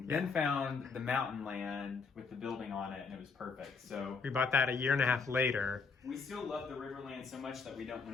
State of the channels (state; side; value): quieter; right; 5.0 dB